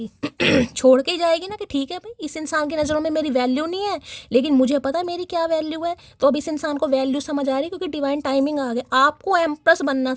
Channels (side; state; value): both; identical; correlation 1.00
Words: छोड़ के ही जाएगी ना कि ठीक है भाई इस इंसान की नज़रों में मेरी वैल्यू नहीं है, लेकिन मुझे पता है मेरी क्या वैल्यू है। तो अब इस इंसान को वैल्यू समझ आ रही, क्योंकि डिवाइन टाइमिंग आ गया। आपको एम्प्रेस बनना